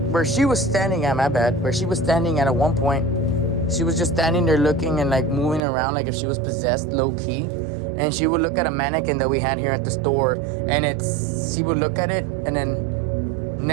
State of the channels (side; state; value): left; drops out; at 5.6 s